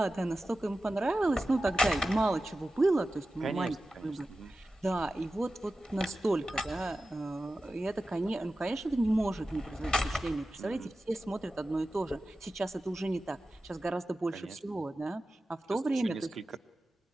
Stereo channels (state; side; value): normal; both; correlation 0.94